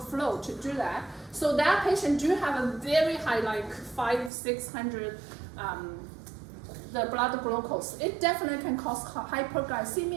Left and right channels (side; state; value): left; drops out; at 4.3 s